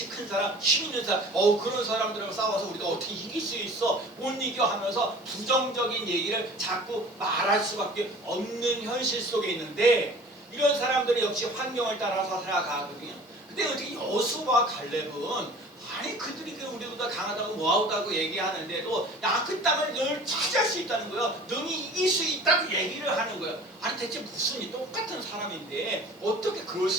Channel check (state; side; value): normal; both; correlation 0.44